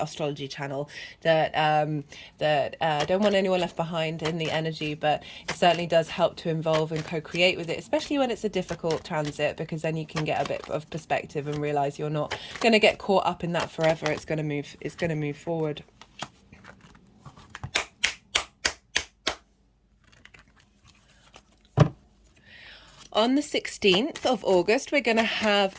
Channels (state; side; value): identical; both; correlation 1.00